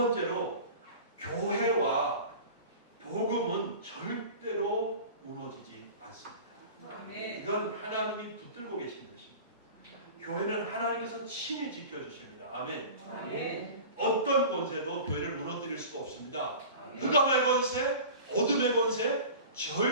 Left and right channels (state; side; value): inverted; both; correlation -0.37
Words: 교회와 복음은 절대로 무너지지 않습니다. 이건 하나님이 붙들고 계신 것입니다. 교회는 하나님께서 친히 지켜주십니다. 아멘. 어떤 권세도 교회를 무너뜨릴 수가 없습니다. 흑암의 권세, 어둠의 권세,